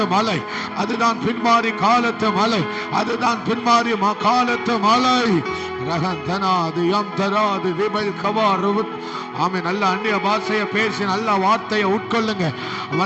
மலை, அதுதான் பின்மாரி காலத்து மலை, அதுதான் பின்மாரி காலத்து மலை. ரகந்தனா தராது யாம் தராது ரிபல் கவாரு. ஆமே, நல்ல அந்நிய பாஷையை பேசி நல்ல வார்த்தையை உட்கொள்ளுங்க.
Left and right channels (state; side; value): identical; both; correlation 1.00